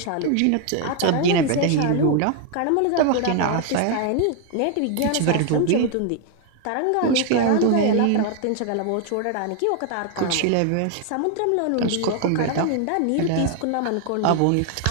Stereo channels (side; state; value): both; different; correlation 0.01